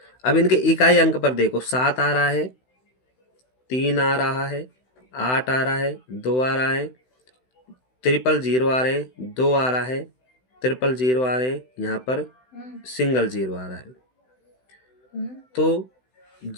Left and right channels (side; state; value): right; late; 16 ms